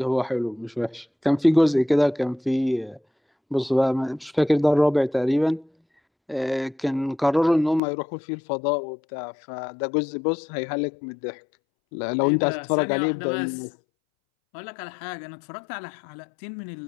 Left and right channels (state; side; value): drops out; right; at 7.8 s